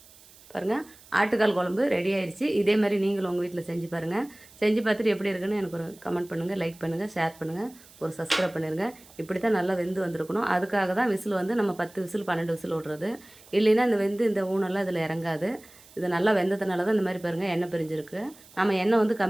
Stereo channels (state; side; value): noise; right; hiss, 24 dB below the sound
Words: பாருங்கள், ஆட்டுக்கால் குழம்பு ரெடி ஆயிடுச்சு. இதே மாதிரி நீங்களும் உங்கள் வீட்டில் செஞ்சு பாருங்கள். செஞ்சு பார்த்துட்டு எப்படி இருக்குன்னு எனக்கு ஒரு கமெண்ட் பண்ணுங்கள், லைக் பண்ணுங்கள், ஷேர் பண்ணுங்கள், ஒரு சப்ஸ்கிரைப் பண்ணிடுங்க. இப்படி தான் நல்லா வெந்து வந்திருக்கணும். அதுக்காக தான் விசில் நம்ம 10 விசில் 12 விசில் விட்றது. இல்லைன்னா இந்த ஊனெல்லாம் இதில் இறங்காது. இது நல்லா வெந்ததுனால தான் இந்த மாதிரி பாருங்கள் எண்ணெய் பிரிஞ்சிருக்கு. நம்ம எண்ணெய்